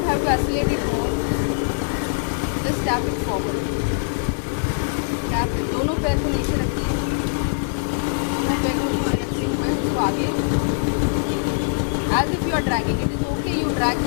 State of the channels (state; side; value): silent; right; 64 dB below the other